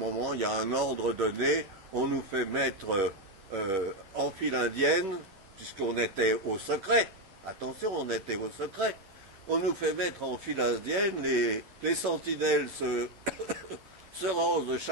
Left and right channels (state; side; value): late; left; 10 ms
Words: il y a un ordre donné. On nous fait mettre en file indienne, puisqu'on était au secret. Attention, on était au secret. On nous fait mettre en file indienne. Les sentinelles se rangent de